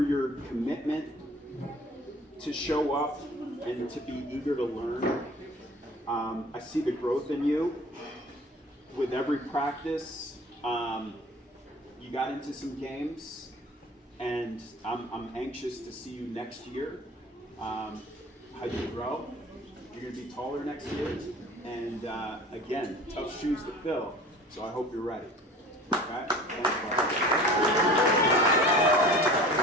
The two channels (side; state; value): both; normal; correlation 0.44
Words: your commitment to show up and to be eager to learn. I see the growth in you with every practice. You got into some games, and I'm anxious to see you next year. How you grow. You're going to be taller next year. And again, tough shoes to fill. So I hope you're ready. Okay? Thanks, bud.